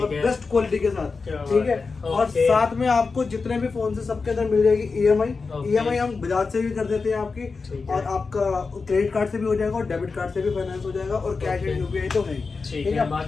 बेस्ट क्वालिटी के साथ, ठीक है। और साथ में आपको जितने भी फोन से सबके अंदर मिल जाएगी EMI हम बजाज से भी कर देते हैं आपकी, और आपका क्रेडिट कार्ड से भी हो जाएगा और डेबिट कार्ड से भी फाइनेंस हो जाएगा और कैश एंड UPI तो है, ठीक है।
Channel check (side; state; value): right; quieter; 4.5 dB